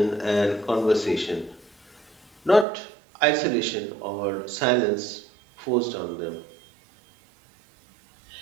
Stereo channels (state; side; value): drops out; left; at 2.7 s